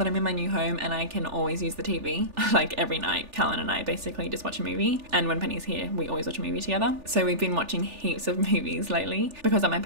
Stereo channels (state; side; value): late; left; 3.4 ms